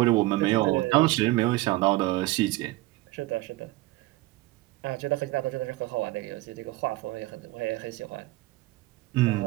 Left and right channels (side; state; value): left; quieter; 19.4 dB